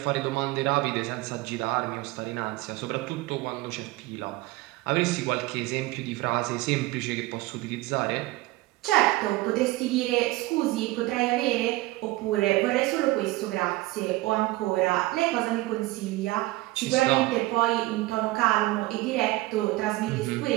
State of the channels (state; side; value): quieter; left; 19.4 dB